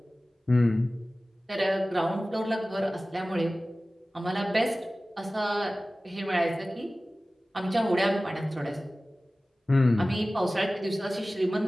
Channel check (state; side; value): normal; both; correlation 0.97